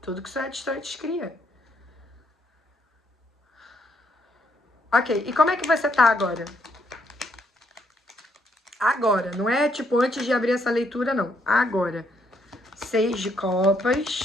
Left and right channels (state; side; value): normal; both; correlation 0.73